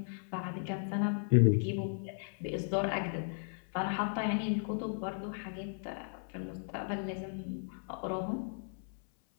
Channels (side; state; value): right; silent; 54 dB below the other